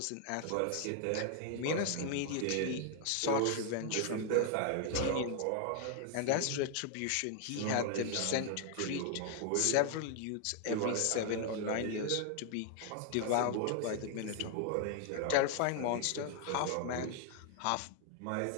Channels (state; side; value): different; both; correlation 0.00